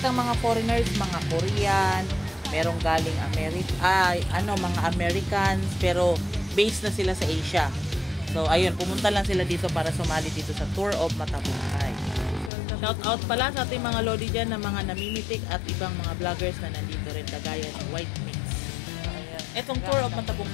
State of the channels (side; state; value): right; drops out; at 12.5 s